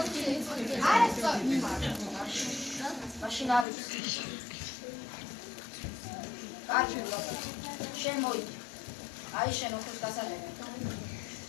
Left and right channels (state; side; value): drops out; right; at 3.7 s